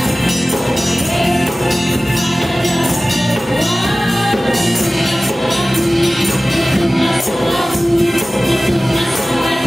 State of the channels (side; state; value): both; normal; correlation 0.97